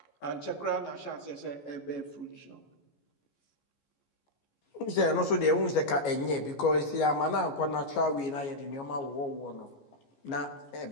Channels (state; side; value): late; right; 14 ms